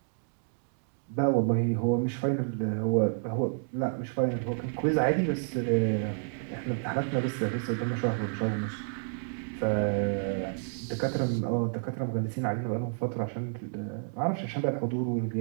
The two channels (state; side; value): silent; left; digital silence